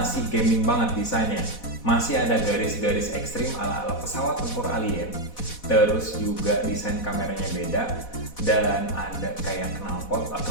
gaming banget desainnya. Masih ada garis-garis ekstrim ala-ala pesawat tempur alien. Terus juga desain kameranya beda. Dan ada kayak knalpot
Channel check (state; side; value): late; right; 4.1 ms